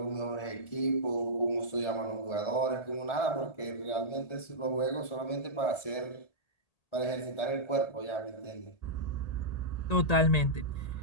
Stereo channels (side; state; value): right; late; 1.3 ms